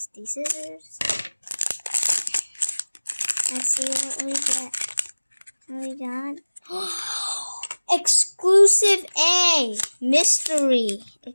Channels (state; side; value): inverted; both; correlation -1.00